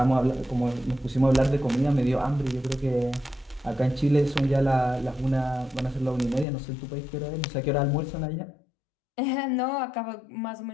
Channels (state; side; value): drops out; right; at 6.5 s